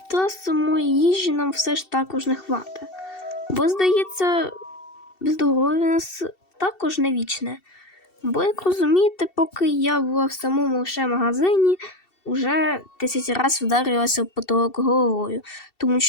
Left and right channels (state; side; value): late; right; 2.7 ms